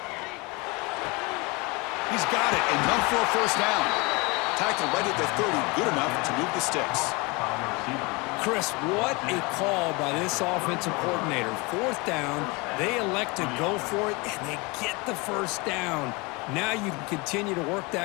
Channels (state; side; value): quieter; right; 26.9 dB